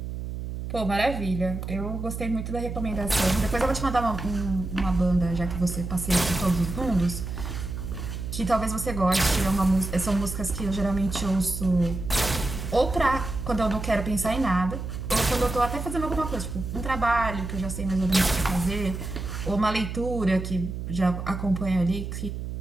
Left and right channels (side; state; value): right; noise; hum, 6 dB below the sound